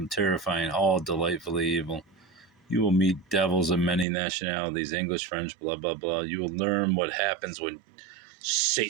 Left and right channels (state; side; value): drops out; left; at 4.0 s